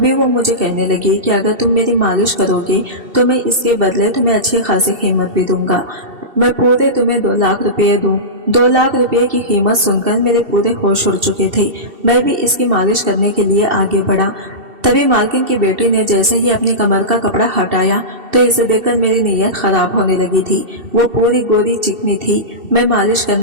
वो मुझे कहने लगी कि अगर तुम मेरी मालिश करोगे तो मैं इसके बदले तुम्हें अच्छी खासी कीमत भी दूंगा। मैं पूरे तुम्हें 2 लाख रुपए दूं। 2 लाख रुपए की कीमत सुनकर मेरे पूरे होश उड़ चुके थे। मैं भी इसकी मालिश करने के लिए आगे बढ़ा। तभी मालकिन की बेटी ने जैसे ही अपनी कमर का कपड़ा हटाया तो इसे देखकर मेरी नीयत खराब होने लगी थी। वो पूरी गोरी चिकनी थी। मैं मालिश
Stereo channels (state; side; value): late; left; 2.7 ms